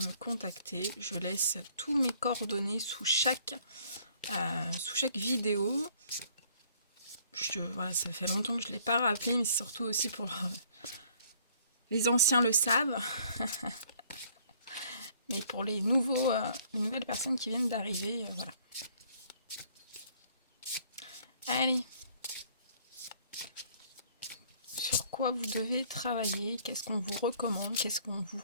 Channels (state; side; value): inverted; both; correlation -0.60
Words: contacter. Je laisse tous mes coordonnées sous chaque vidéo. Voilà, ça fait longtemps que je ne l'ai pas rappelé, mais c'est surtout aussi pour les anciens le savent. Mais pour les nouvelles personnes qui viennent d'arriver, voilà. Allez. Sur quoi vous devez travailler, qu'est-ce qu'on vous recommande, qu'est-ce qu'on vous